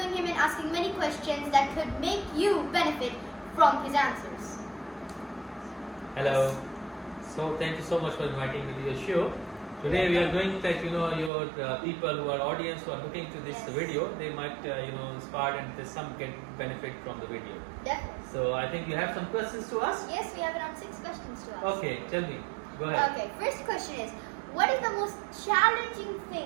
him and asking many questions that could make you benefit from his answers. Hello. So thank you so much for inviting me to your show. Today we are going that your people who are audience who are looking to this video, they might inspired and there's some get benefit from the video. Definitely. So I think you have some questions to ask. Yes, we have around 6 questions to ask. Okay, tell me. Go ahead. Okay, first question is, what is the most challenging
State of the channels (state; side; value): drops out; left; at 11.3 s